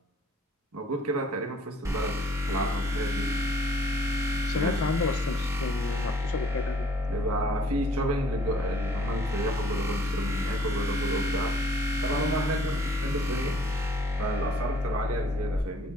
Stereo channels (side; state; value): both; normal; correlation 0.58